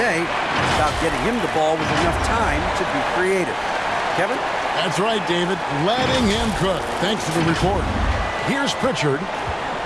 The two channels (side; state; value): both; identical; correlation 1.00